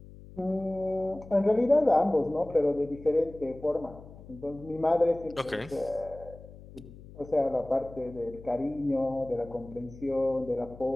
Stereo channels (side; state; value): left; noise; hum, 18 dB below the sound